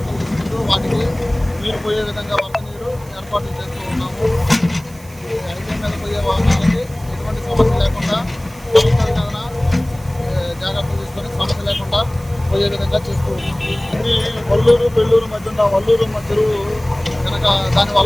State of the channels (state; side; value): noise; right; hiss, 23 dB below the sound